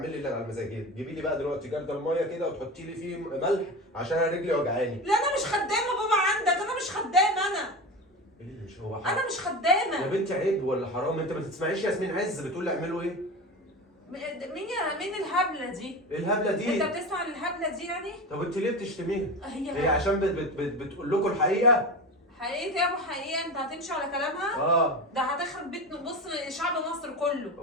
اللي على مزاجك. جيبي لي بقى دلوقتي جردل الميه كده وتحطي لي فيه ملح عشان انا رجلي وجعاني. لا انا مش خدامه بابا عندك، انا مش خدامه انا. ايه اللي مش هو حرام؟ انا مش خدامه يا بنتي عيب ولا حرام؟ انت ما تسمعيش ياسمين عز بتقول لي اعملوا ايه؟ مين الهبله دي؟ ايه الهبله دي؟ انت بتسمع الهبله دي يعني؟ طب انت ليه بتشتميها؟ هي هي عشان بتقول لكم الحقيقه؟ حقيقة يا ابو حقيقة، انت هتمشي على كلامها؟ ده هتخرب بيت، بص شعب مصر كله.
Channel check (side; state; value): both; normal; correlation 0.26